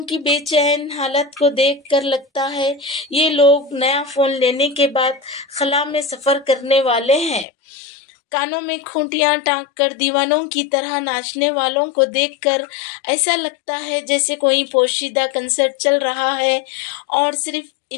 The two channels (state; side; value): drops out; right; at 7.5 s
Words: کی بے چین حالت کو دیکھ کر لگتا ہے یہ لوگ نیا فون لینے کے بعد خلا میں سفر کرنے والے ہیں۔ کانوں میں کھونٹیاں ٹانک کر دیوانوں کی طرح ناچنے والوں کو دیکھ کر ایسا لگتا ہے جیسے کوئی پوشیدہ کنسرٹ چل رہا ہے اور صرف